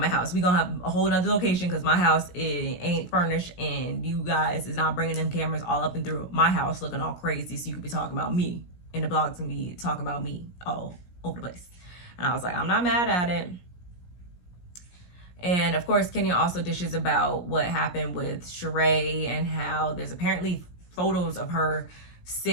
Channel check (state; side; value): late; right; 17 ms